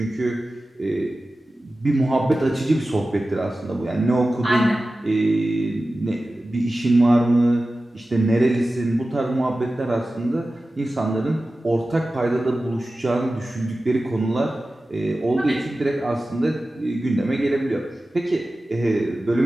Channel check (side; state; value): both; normal; correlation 0.95